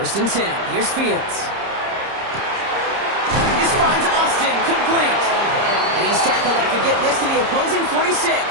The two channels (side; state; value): left; late; 30 ms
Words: and 10. Here's Fields. This finds Austin complete. And he's tackled after getting this to the opposing 46.